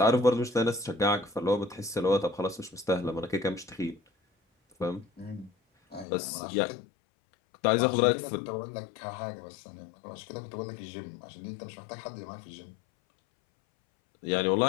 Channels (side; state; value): right; drops out; at 6.1 s